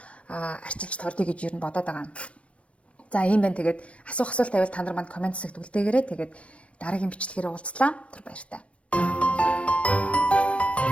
арчилж тордё гэж юу бодоод байгаа. За ийм байна. Тэгээд асуулт тавил та нар манд комент хэсэгт үлдээгээрэй. Тэгээд дараагийн бичлэгээр уулзлаа. Тэр баяртай.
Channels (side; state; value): right; late; 0.062 ms